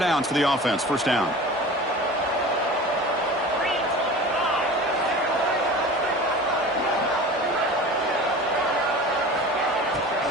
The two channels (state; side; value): normal; both; correlation 0.37